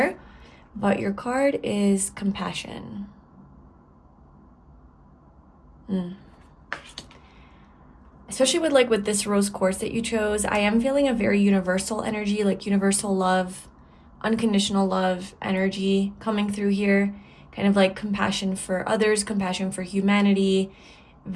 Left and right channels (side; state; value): both; identical; correlation 1.00